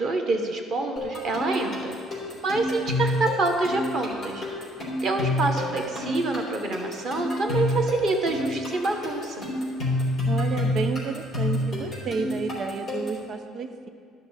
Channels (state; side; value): normal; both; correlation 0.65